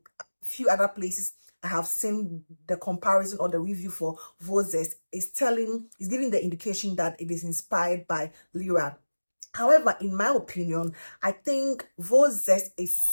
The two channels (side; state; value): both; inverted; correlation -1.00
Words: a few other places, I have seen the comparison or the review for Vo Zest is giving the indication that it is inspired by Lira. However, in my opinion, I think Vo Zest is